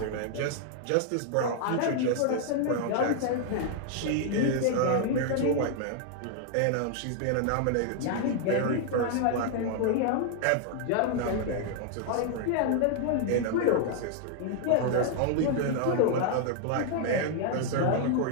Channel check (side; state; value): both; different; correlation 0.00